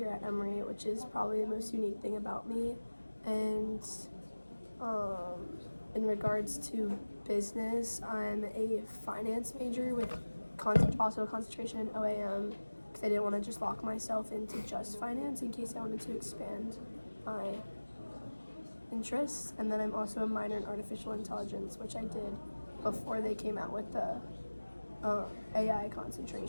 at Emory, which is probably the most unique thing about me. And in regards to business, I'm a finance major with also a concentration in OAM because I didn't want to just lock myself into just finance in case I wanted to expand my interests. And then I'm also a minor in artificial intelligence, which I did before they came out with the AI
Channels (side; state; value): both; inverted; correlation -1.00